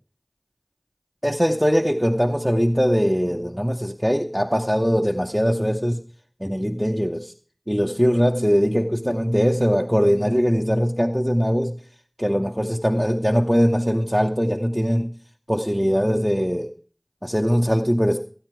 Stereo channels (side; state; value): both; identical; correlation 1.00